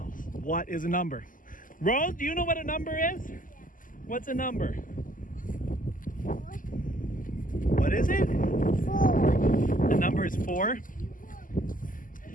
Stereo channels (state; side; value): late; right; 0.39 ms